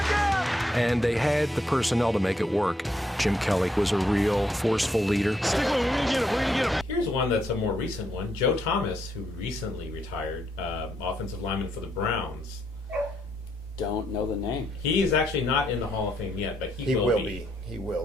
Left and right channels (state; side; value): normal; both; correlation 0.76